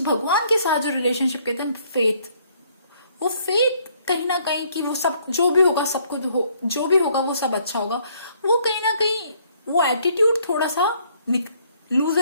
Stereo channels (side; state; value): both; inverted; correlation -0.65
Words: भगवान के साथ जो रिलेशनशिप कहते हैं फेथ, वो फेथ कहीं ना कहीं कि वो सब जो भी होगा, सब कुछ जो भी होगा वो सब अच्छा होगा, वो कहीं ना कहीं वो एटीट्यूड थोड़ा सा